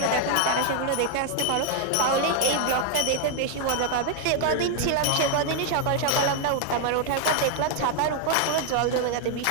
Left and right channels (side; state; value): both; different; correlation 0.00